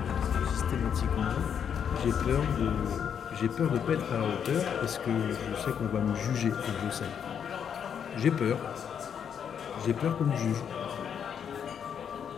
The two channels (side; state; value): right; quieter; 7.9 dB